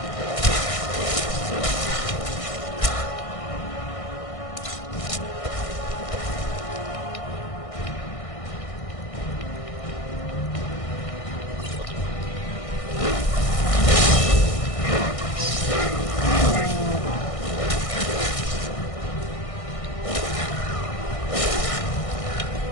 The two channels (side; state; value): right; late; 1.6 ms